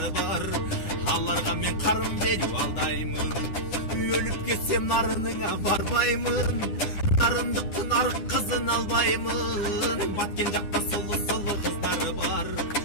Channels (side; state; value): right; late; 9.8 ms